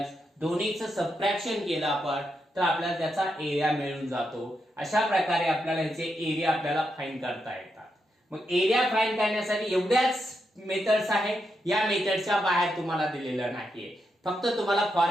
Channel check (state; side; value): normal; both; correlation 0.84